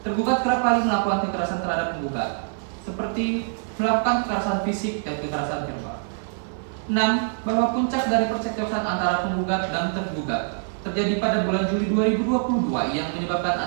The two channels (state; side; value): silent; left; 56 dB below the other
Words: tergugat kerap kali melakukan kekerasan terhadap penggugat, seperti melakukan kekerasan fisik dan kekerasan verbal. 6. Bahwa puncak dari percekcokan antara penggugat dan tergugat terjadi pada bulan Juli 2022 yang menyebabkan